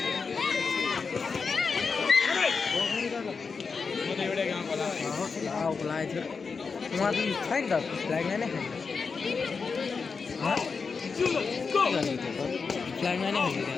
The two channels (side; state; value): right; quieter; 5.1 dB